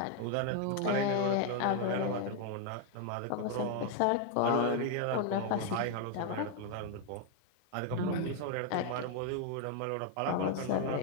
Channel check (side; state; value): both; different; correlation 0.01